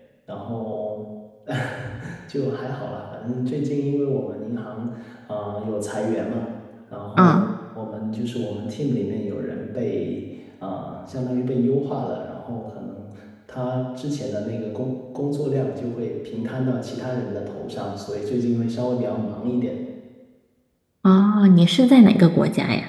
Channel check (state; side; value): identical; both; correlation 1.00